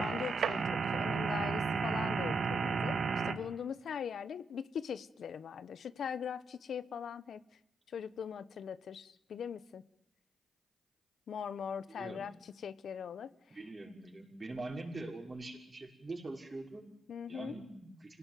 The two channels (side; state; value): both; normal; correlation 0.78